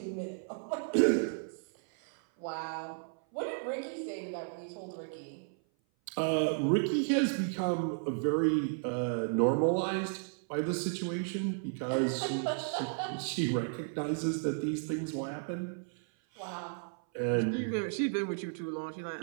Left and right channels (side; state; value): left; silent; 55 dB below the other